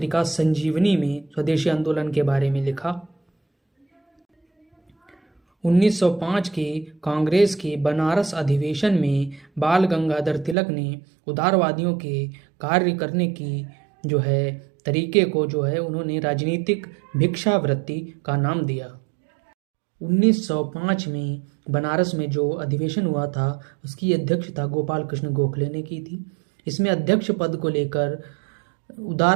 संजीवनी में स्वदेशी आंदोलन के बारे में लिखा। 1905 के कांग्रेस के बनारस अधिवेशन में बाल गंगाधर तिलक ने उदारवादियों के कार्य करने की तरीके को उन्होंने राजनीतिक भिक्षावृत्ति का नाम दिया। 1905 में बनारस में जो अधिवेशन हुआ था उसकी अध्यक्षता गोपाल कृष्ण गोखले ने की थी। इसमें अध्यक्ष पद को लेकर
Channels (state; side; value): drops out; left; at 10.6 s